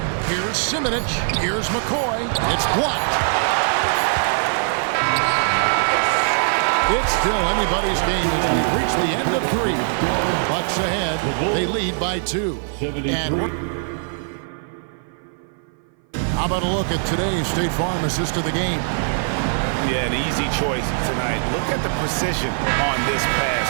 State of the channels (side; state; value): left; silent; 57 dB below the other